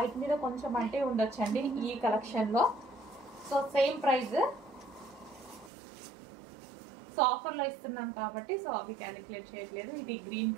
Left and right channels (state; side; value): drops out; left; at 5.7 s